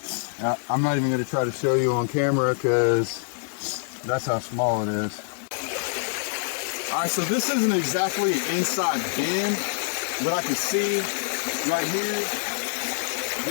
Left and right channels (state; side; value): silent; right; digital silence